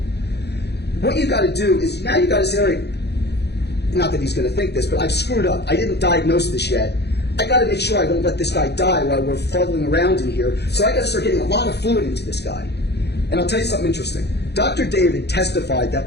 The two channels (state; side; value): late; right; 0.48 ms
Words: What you've got to do is, now you've got to say, all right, not that he's going to think this, but I've screwed up. I didn't diagnose this yet. I got to make sure I don't let this guy die while we're fuddling around in here. So I got to start getting a lot of fluid into this guy. And I'll tell you something interesting. Dr. David testified that